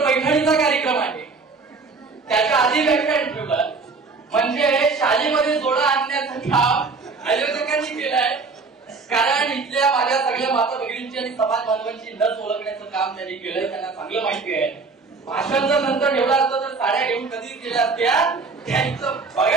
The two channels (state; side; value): quieter; left; 4.3 dB